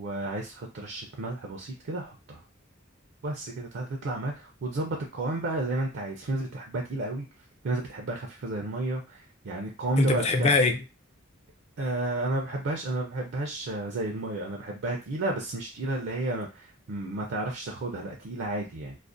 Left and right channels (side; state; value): both; normal; correlation 0.34